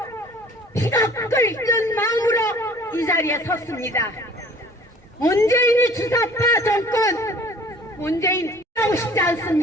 피가 끓는 마음으로 이 자리에 섰습니다. 문재인이 주사파 정권, 문재인 하고 싶지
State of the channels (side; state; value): both; normal; correlation 0.50